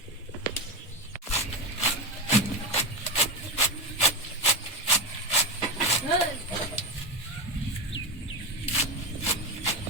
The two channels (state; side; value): normal; both; correlation 0.15